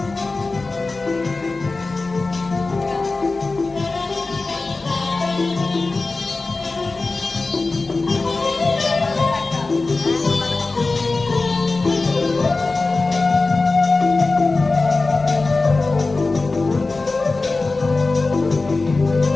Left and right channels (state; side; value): quieter; right; 3.6 dB